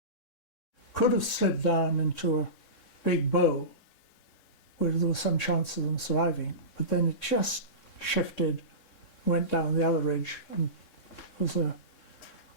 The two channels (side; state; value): right; late; 3.6 ms